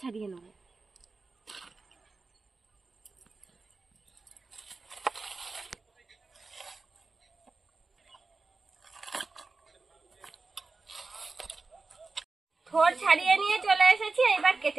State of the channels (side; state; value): left; quieter; 3.9 dB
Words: ছাড়িয়ে নেব। থোড় ছাড়িয়ে নিয়ে চলে এসেছি, এবার